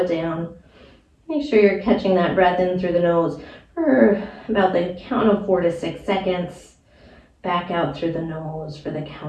down. Make sure you're catching that breath in through the nose for about the count of 4 to 6 seconds. Back out through the nose for the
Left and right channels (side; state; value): both; identical; correlation 1.00